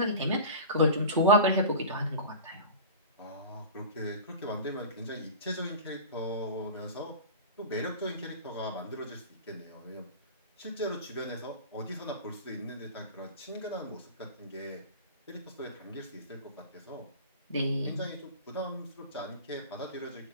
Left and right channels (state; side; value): inverted; both; correlation -0.33